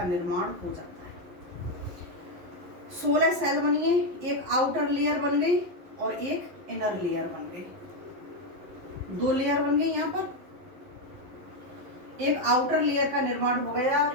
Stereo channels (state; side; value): late; left; 11 ms